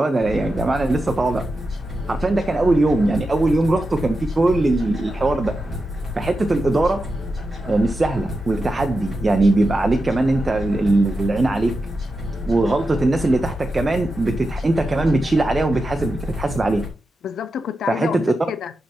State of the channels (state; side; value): normal; both; correlation 0.90